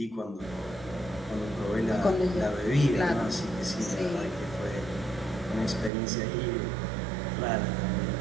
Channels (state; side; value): drops out; left; at 5.9 s